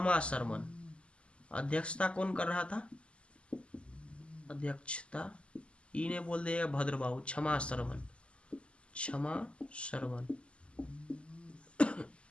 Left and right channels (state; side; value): late; right; 0.055 ms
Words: शर्मन। अध्यक्षता कौन कर रहा था? अध्यक्षता इने बोल देगा भद्रबाहु, क्षमा शर्मन, क्षमा शर्मन।